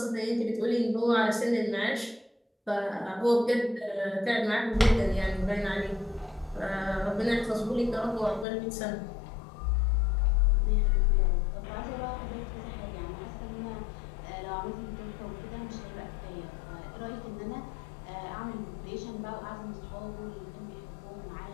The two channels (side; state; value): right; drops out; at 8.5 s